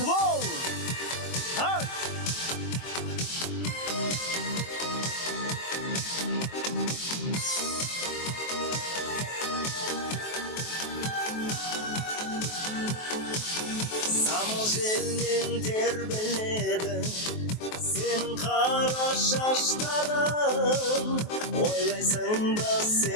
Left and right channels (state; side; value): late; right; 23 ms